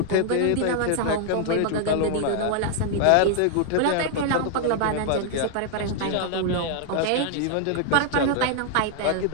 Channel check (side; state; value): both; different; correlation 0.00